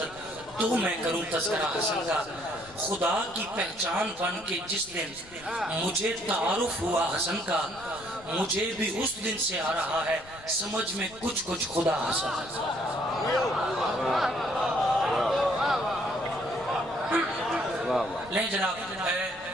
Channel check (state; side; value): noise; left; rumble, 21 dB below the sound